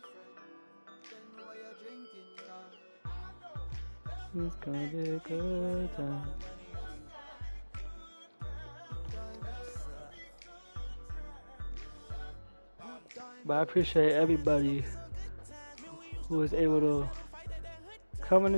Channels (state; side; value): inverted; both; correlation -1.00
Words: It's gonna be a good time. But I appreciate everybody who was able to come in